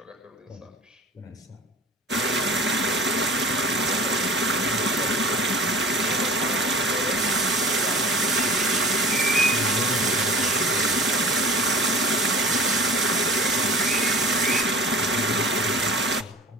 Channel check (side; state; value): both; normal; correlation 0.41